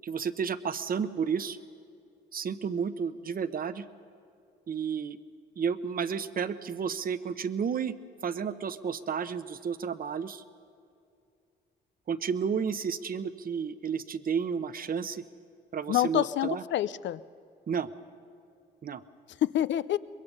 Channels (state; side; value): normal; both; correlation 0.34